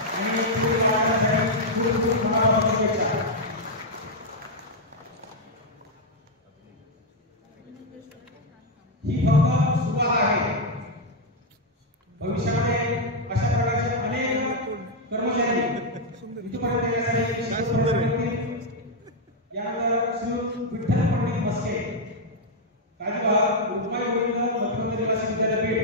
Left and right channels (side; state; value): both; normal; correlation -0.01